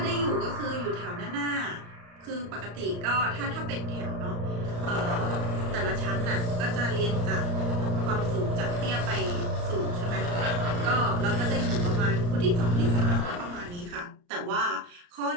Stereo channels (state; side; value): late; left; 34 ms